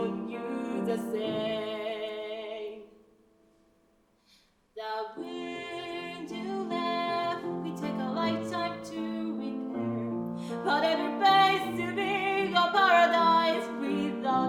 you the same. The wound you left, we take a lifetime to repair. But every place to be a paradise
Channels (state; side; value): identical; both; correlation 1.00